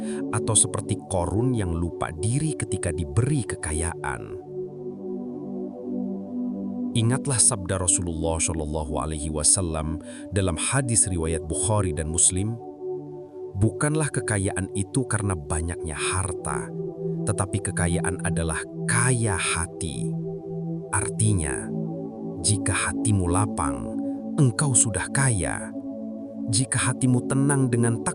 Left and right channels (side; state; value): both; identical; correlation 1.00